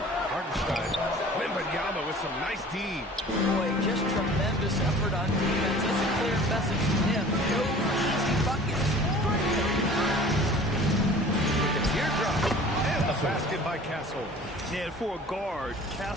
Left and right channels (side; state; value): both; normal; correlation 0.45